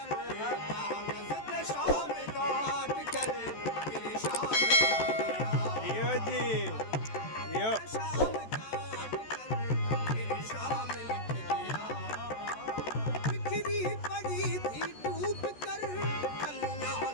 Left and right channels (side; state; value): right; late; 14 ms